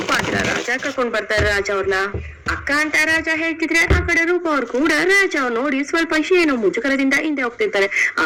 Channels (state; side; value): identical; both; correlation 1.00